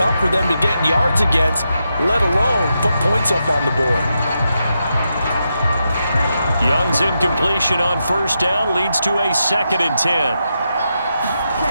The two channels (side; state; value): both; inverted; correlation -0.85